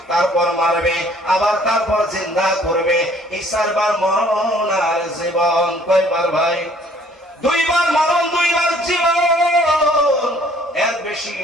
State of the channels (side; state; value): both; normal; correlation 0.58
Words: তারপর মারবে, আবার তারপর জিন্দা করবে। এই 4 বার মরণ আর জীবন। কয়বার ভাই? 2 বার মরণ, 2 বার জীবন। এর বেশি